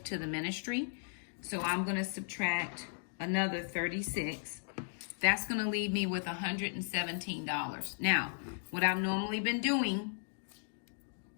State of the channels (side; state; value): right; silent; digital silence